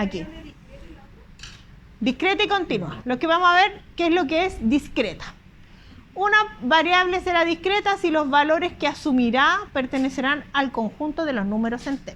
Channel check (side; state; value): both; identical; correlation 1.00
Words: Discreta y continua. Lo que vamos a ver, ¿qué es lo que es discreta? Una variable será discreta si los valores que asumirá pertenecerán al conjunto de los números